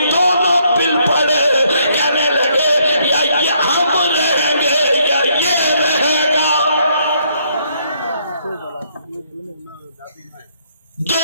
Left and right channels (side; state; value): both; inverted; correlation -0.70